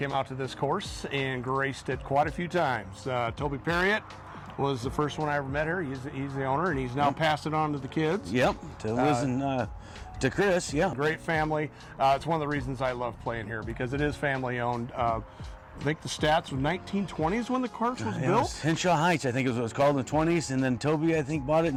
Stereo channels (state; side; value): identical; both; correlation 1.00